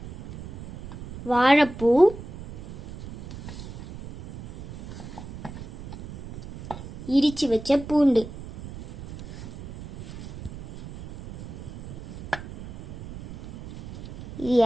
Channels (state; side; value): noise; right; rumble, 14 dB below the sound